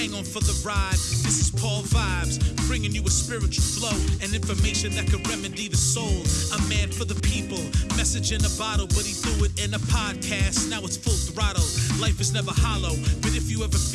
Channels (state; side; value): identical; both; correlation 1.00